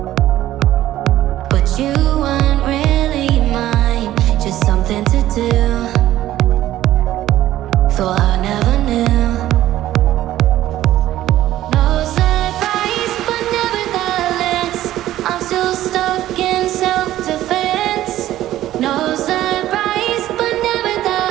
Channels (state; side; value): quieter; left; 13.8 dB